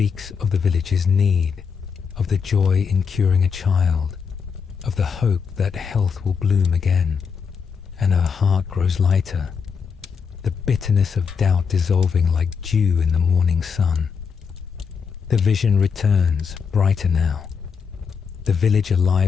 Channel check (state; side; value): quieter; right; 6.1 dB